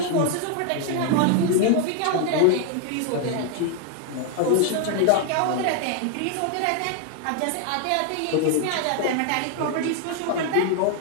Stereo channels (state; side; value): different; both; correlation 0.00